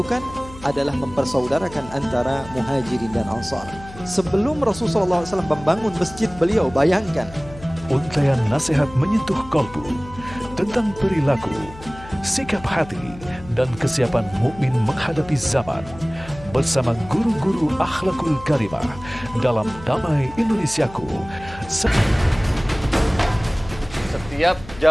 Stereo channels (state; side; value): noise; left; hum, 16 dB below the sound